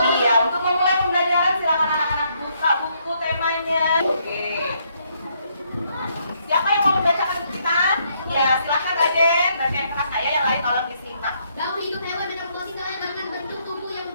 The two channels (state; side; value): inverted; both; correlation -0.72